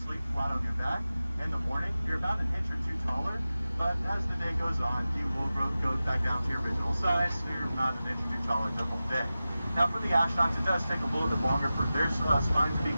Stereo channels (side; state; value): both; inverted; correlation -0.94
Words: flat on your back. In the morning, you're about an inch or two taller, but as the day goes on, you will go back down to your original size, so you're not an inch or two taller the whole day. Now for the astronauts, it does take a little bit longer for their spine to be